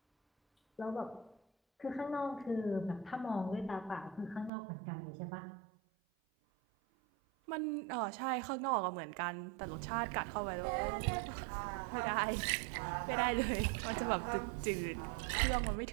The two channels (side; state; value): left; drops out; at 4.5 s